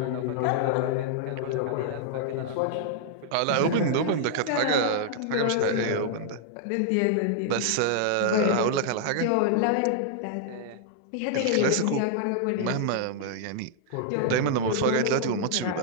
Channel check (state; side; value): different; both; correlation -0.01